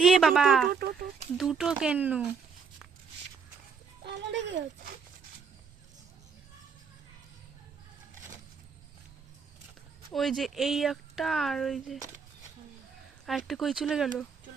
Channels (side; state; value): left; quieter; 5.7 dB